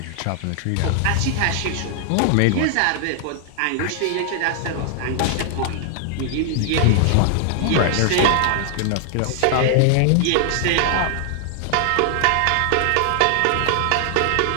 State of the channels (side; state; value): both; different; correlation 0.00